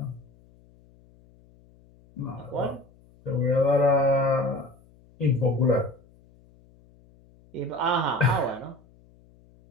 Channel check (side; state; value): left; noise; hum, 29 dB below the sound